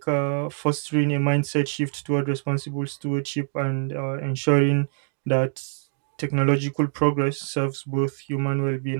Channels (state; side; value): silent; left; digital silence